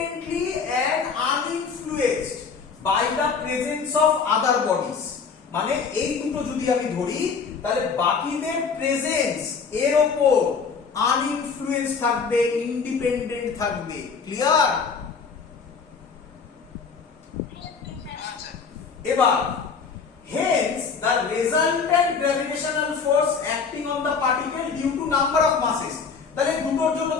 and uninfluenced by the presence of other bodies। মানে এই দুটো যদি আমি ধরি তাহলে বাকিদের প্রেজেন্স এর উপর আনইনফ্লুয়েন্স থাকবে, ইন্ডিপেন্ডেন্ট থাকবে। ক্লিয়ার? এবার hence the resultant gravitational force acting on the particle due to number of masses। তাহলে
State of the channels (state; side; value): quieter; right; 5.5 dB